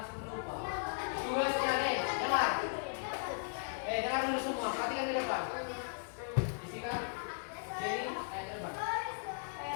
lupa. Tugasnya nih, dengar. Dengar dulu semua, perhatikan di depan. Isikan. Jadi, ke depan.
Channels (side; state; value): right; silent; digital silence